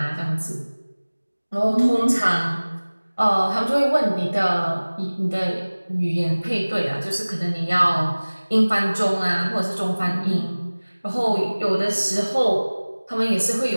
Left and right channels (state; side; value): inverted; both; correlation -1.00